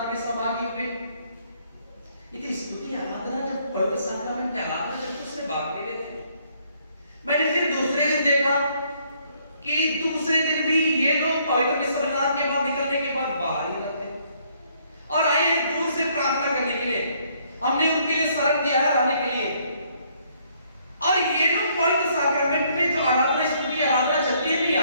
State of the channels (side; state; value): both; inverted; correlation -0.67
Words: में सहभागी हुए। इतनी स्तुति आराधना जब पवित्र साक्रामेंट की आराधना जब उससे भाग ले रहे थे। मैंने फिर दूसरे दिन देखा कि दूसरे दिन भी ये लोग पवित्र संविधान के बाद निकलने के बाद बाहर ही रहते और आए दूर से प्रार्थना करने के लिए। हमने उनके लिए शरण दिया है रहने के लिए। और ये लोग पवित्र साक्रामेंट में जो आराधना स्तुति आराधना चलती है नहीं